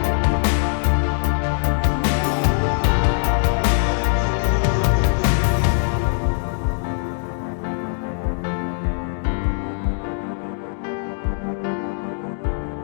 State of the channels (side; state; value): right; silent; digital silence